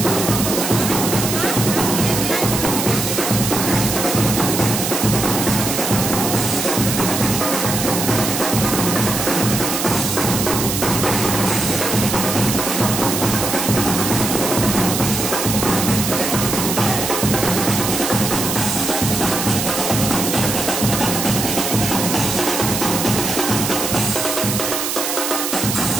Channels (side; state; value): right; noise; hiss, 2 dB below the sound